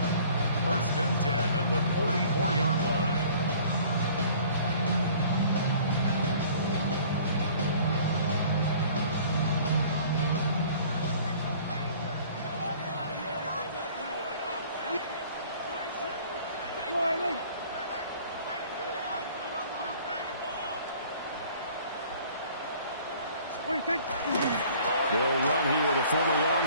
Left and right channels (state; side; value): inverted; both; correlation -0.52